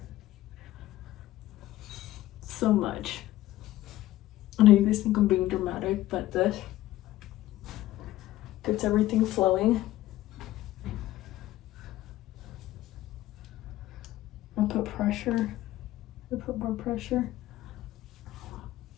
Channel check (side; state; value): right; quieter; 15.3 dB